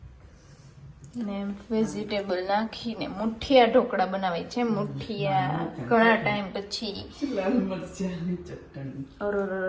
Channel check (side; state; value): both; identical; correlation 1.00